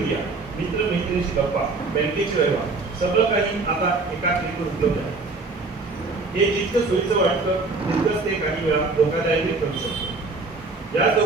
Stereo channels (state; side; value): quieter; left; 3.7 dB